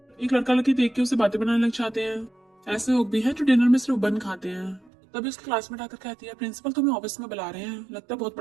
एक लड़का लड़की देख के उसे बातें बनाने लग जाते हैं। ऐसे लोग भी हैं जो डिनर में सिर्फ बन खाते हैं। तभी उसकी क्लासमेट आकर कहती है प्रिंसिपल तुम्हें ऑफिस में बुला रहे हैं, लगता है बहुत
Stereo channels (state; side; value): drops out; left; at 4.9 s